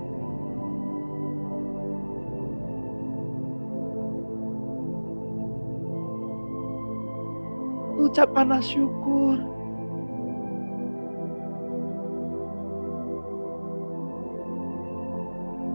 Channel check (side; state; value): both; inverted; correlation -1.00